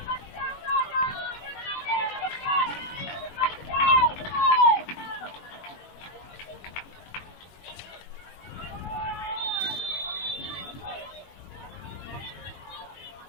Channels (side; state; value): right; late; 21 ms